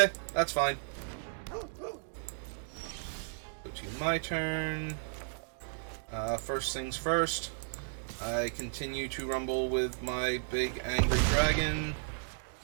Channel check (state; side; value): silent; left; digital silence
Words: that's fine. my turn. First things first, I continue to rumble with my big angry dragon.